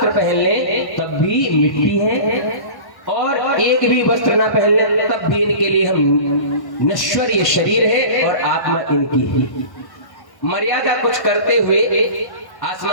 पहन लें तब भी मिट्टी है, और एक भी वस्त्र ना पहन लें तब भी इनके लिए हम नश्वर ये शरीर है और आत्मा इनकी ही। मर्यादा कुछ करते हुए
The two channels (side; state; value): right; late; 1.1 ms